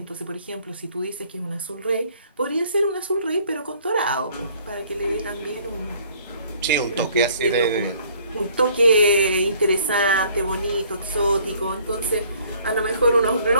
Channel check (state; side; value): inverted; both; correlation -0.59